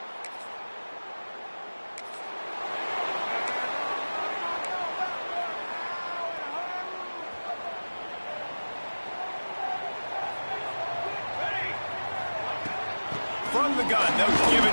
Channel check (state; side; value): inverted; both; correlation -1.00